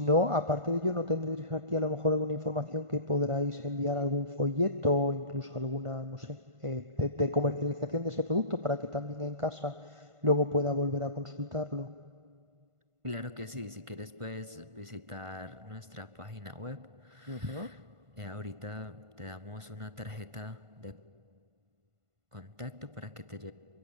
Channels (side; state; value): left; late; 1.5 ms